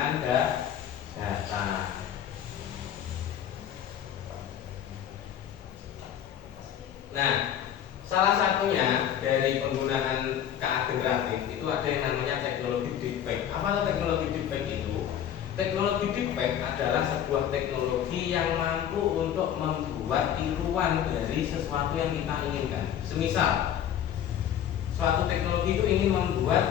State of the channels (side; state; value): right; quieter; 9.9 dB